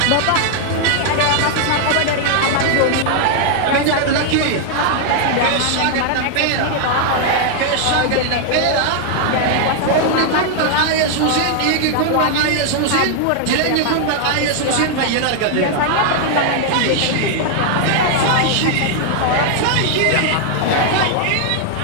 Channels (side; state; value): both; different; correlation 0.00